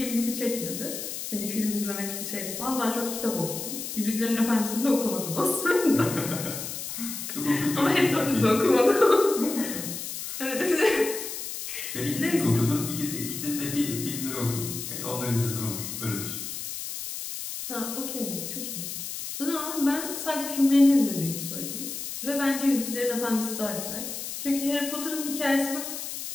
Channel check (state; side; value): noise; left; hiss, 6 dB below the sound